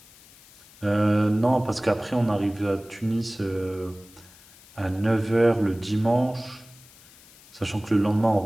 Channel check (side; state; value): left; noise; hiss, 24 dB below the sound